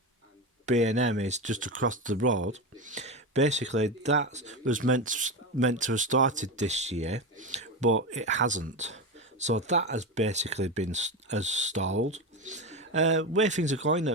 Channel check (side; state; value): both; normal; correlation 0.18